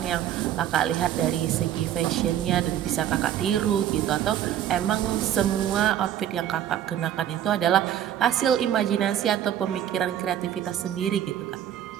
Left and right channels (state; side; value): quieter; left; 10.8 dB